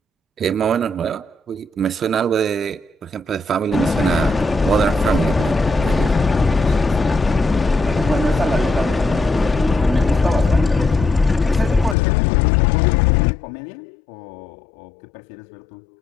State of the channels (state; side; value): drops out; right; at 12.0 s